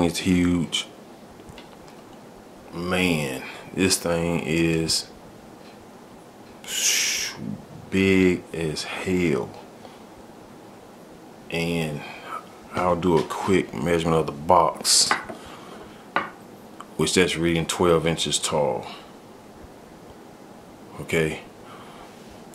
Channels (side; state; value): both; identical; correlation 1.00